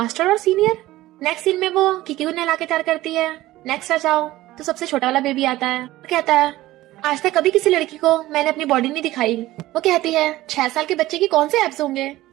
और सीनियर। नेक्स्ट सीन में वो कीकी को नहला के तैयार करती है। नेक्स्ट आ जाओ तो सबसे छोटा वाला बेबी आता है, कहता है आज तक कभी किसी लड़की को मैंने अपनी बॉडी नहीं दिखाई। वो कहती है 6 साल के बच्चे की कौन से एब्स होंगे,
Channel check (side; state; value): left; quieter; 16.7 dB